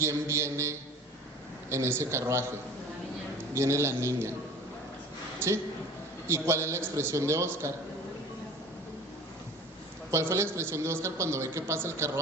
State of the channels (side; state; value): both; normal; correlation 0.42